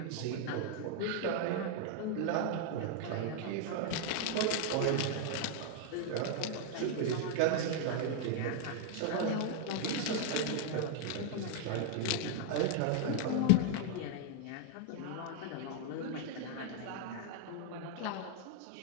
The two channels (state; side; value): different; both; correlation 0.00